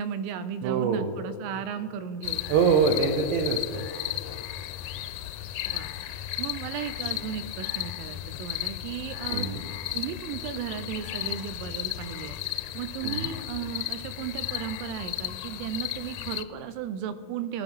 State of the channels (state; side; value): late; left; 22 ms